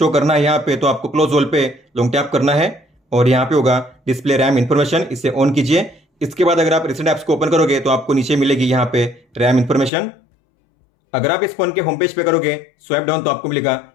करना है यहाँ पे तो आपको क्लोज होल पे लॉन्ग टैप करना है, और यहाँ पे होगा डिस्प्ले रैम इन्फॉर्मेशन, इसे ऑन कीजिए। इसके बाद अगर आप रिसेंट ऐप्स को ओपन करोगे तो आपको नीचे मिलेगी यहाँ पे रैम इन्फॉर्मेशन। अगर आप इस फोन के होम पेज पे करोगे स्वाइप डाउन तो आपको मिलेगा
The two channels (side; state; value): right; drops out; at 9.9 s